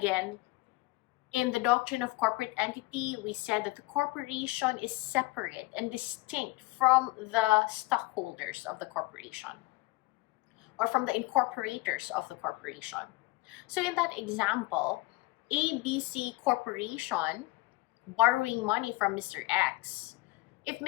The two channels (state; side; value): quieter; right; 21.9 dB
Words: in the doctrine of corporate entity, we said that the corporation is separate and distinct from the stockholders of the corporation or from the incorporators of the corporation. So in that example, ABC Corporation borrowing money from Mr. X. If